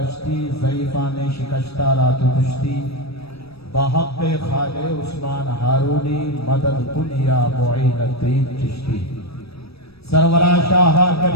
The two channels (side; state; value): right; late; 0.78 ms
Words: ضعیفان شکشتہ رات کشتی، بحق خالِ عثمان ہارونی مدد دنیا معین الدین چشتی، سرورہ شاہ